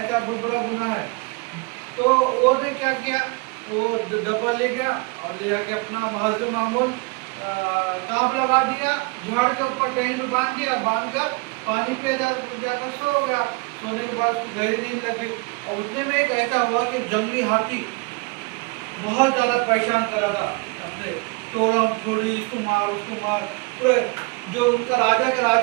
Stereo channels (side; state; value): left; quieter; 29.0 dB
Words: बहुत बड़ा गुनाह है। तो वो ने क्या किया, वो डब्बा ले गया और ले जाके अपना हजर मामूल कांप लगा दिया, झाड़ के ऊपर टहनी में बांध दिया, बांध कर पानी पे जाकर सो गया। सोने के बाद गहरी नींद लग गई। और उतने में एक ऐसा हुआ कि जंगली हाथी बहुत ज्यादा परेशान कर रहा था अपने, तोड़म थोड़ी, इसको मार उसको मार। पूरे जो उनका राजा का